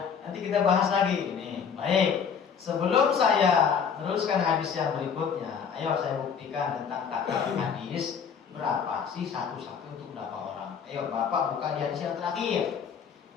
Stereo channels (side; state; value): right; quieter; 6.9 dB